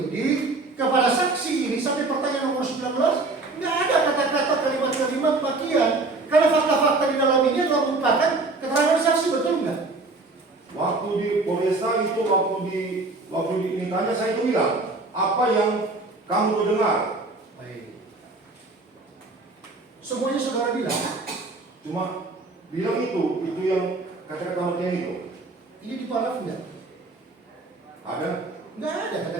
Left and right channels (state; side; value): quieter; left; 3.3 dB